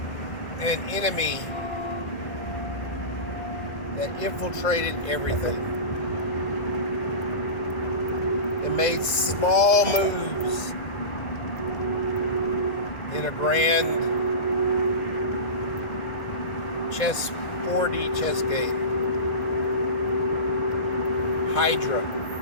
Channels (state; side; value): late; right; 1.7 ms